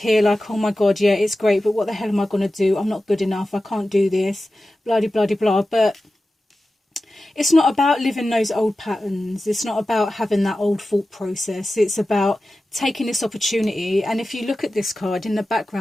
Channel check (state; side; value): normal; both; correlation 0.94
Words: like, oh my God, yeah, it's great, but what the hell am I going to do? I'm not good enough. I can't do this. Blah, blah, blah, blah. But it's not about living those old patterns. It's not about having that old thought process. It's about taking this opportunity. And if you look at this card, in the